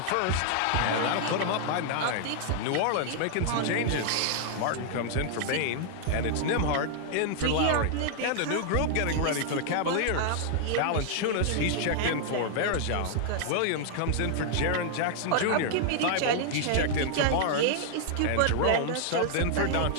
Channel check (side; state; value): both; different; correlation 0.00